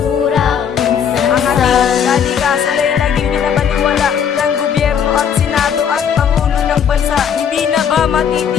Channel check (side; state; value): right; quieter; 7.8 dB